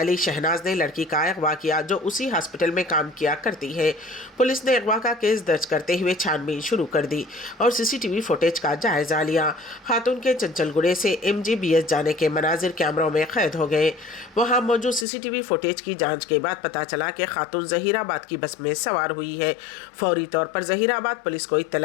शहनाज ने लड़की का अगवा किया, जो उसी हॉस्पिटल में काम किया करती है। पुलिस ने अगवा का केस दर्ज करते हुए छानबीन शुरू कर दी और सीसीटीवी फुटेज का जायजा लिया। खातून के चंचलगुड़े से MGBS जाने के मनाजिर कैमरों में कैद हो गए। वहां मौजूद सीसीटीवी फुटेज की जांच के बाद पता चला कि खातून जहीराबाद की बस में सवार हुई है। फौरी तौर पर जहीराबाद पुलिस को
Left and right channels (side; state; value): right; drops out; at 15.1 s